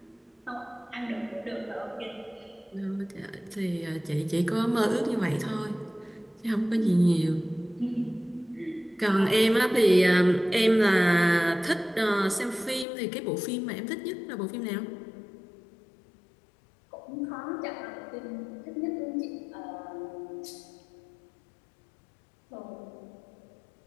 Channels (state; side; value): drops out; right; at 12.9 s